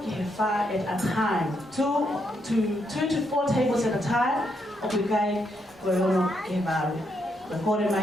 ke fa at a time 2 to 4 tables at a time obligai Koyono ke baru Korea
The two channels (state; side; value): normal; both; correlation 0.78